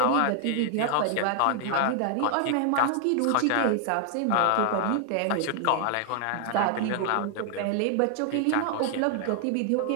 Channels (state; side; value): different; both; correlation 0.00